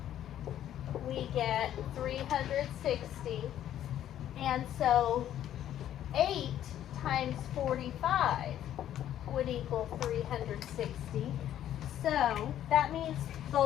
we get 360. And so 8 times 45 would equal 360. So that means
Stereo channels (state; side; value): quieter; right; 11.4 dB